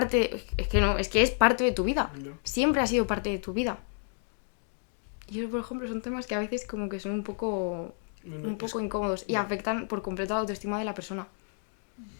es que es parte de tu vida. Ya. Siempre ha sido parte de tu vida. Y eso, por ejemplo, son temas que a veces como que son un poco incómodos y afectan por completo la autoestima de la persona.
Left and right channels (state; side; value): silent; right; 58 dB below the other